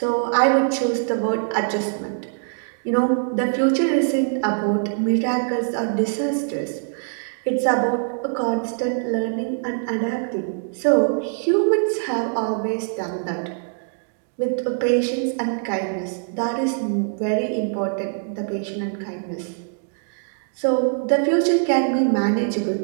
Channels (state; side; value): silent; left; digital silence